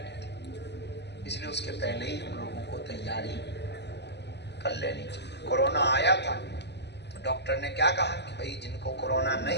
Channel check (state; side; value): late; right; 0.50 ms